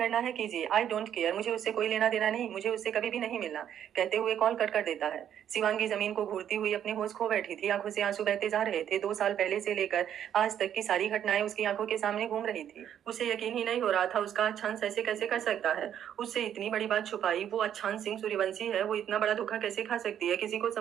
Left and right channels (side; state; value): left; quieter; 9.8 dB